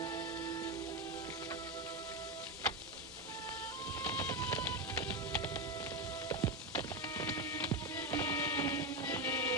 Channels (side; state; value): both; normal; correlation 0.11